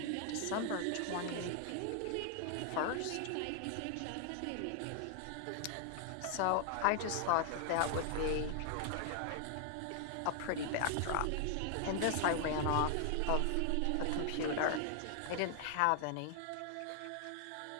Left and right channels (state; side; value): different; both; correlation 0.00